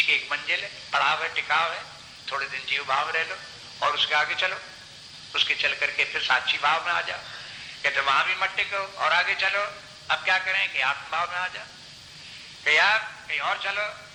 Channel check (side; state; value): both; identical; correlation 1.00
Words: की एक मंजिल है, पड़ाव है, टिकाव है। थोड़े दिन जीव भाव रह लो और उसके आगे चलो, उसके चल करके फिर साक्षी भाव में आ जाओ। कहते वहां भी मत टिको और आगे चलो। अब क्या करें कि आत्म भाव में आ जाओ, कि यार कहीं और चलो।